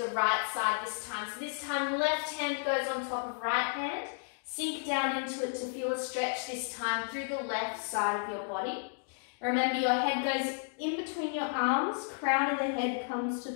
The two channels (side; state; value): right; silent; 56 dB below the other